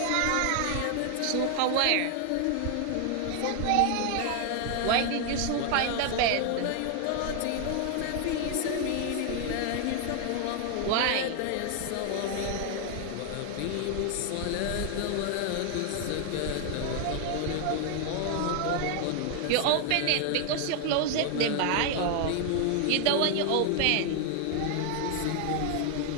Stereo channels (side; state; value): both; different; correlation 0.00